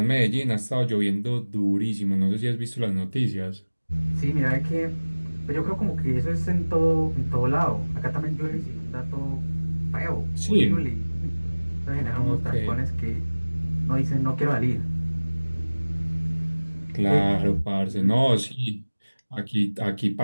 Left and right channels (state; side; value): inverted; both; correlation -1.00